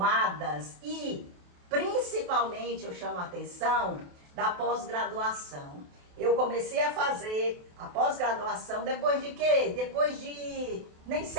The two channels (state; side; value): late; left; 28 ms